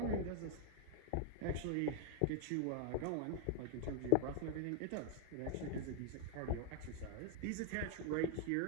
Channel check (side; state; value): both; different; correlation 0.00